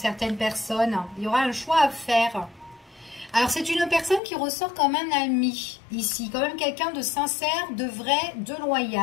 personnes. Il y aura un choix à faire. Alors, c'est une personne qui ressort comme un ami, ici. Quand même quelqu'un de sincère, de vrai, de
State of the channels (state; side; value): drops out; right; at 4.2 s